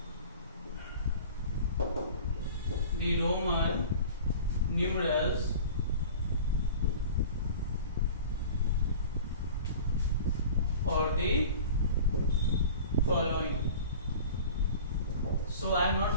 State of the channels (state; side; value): inverted; both; correlation -0.40